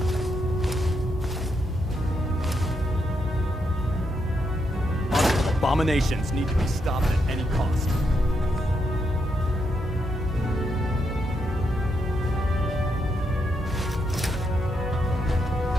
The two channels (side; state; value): both; normal; correlation 0.80